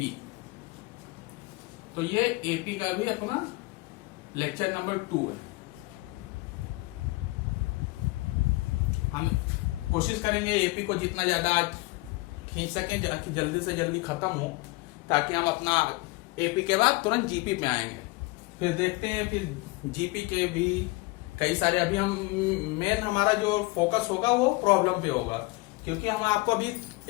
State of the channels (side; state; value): right; quieter; 23.4 dB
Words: तो ये एपी का भी अपना लेक्चर नंबर 2 है। हम कोशिश करेंगे एपी को जितना ज्यादा आज खींच सकें जल्दी से जल्दी खत्म हो, ताकि हम अपना एपी के बाद तुरंत जीपी पे आएंगे। फिर देखते हैं फिर जीपी के भी कई सारे। अभी हम मेन हमारा जो फोकस होगा वो प्रॉब्लम पे होगा, क्योंकि हम आपको अभी